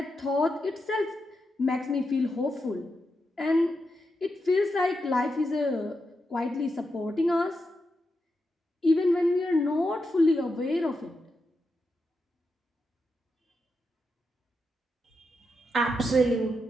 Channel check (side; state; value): both; normal; correlation 0.86